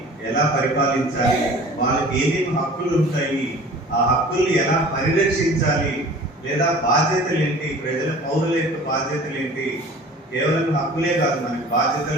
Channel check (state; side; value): normal; both; correlation 0.44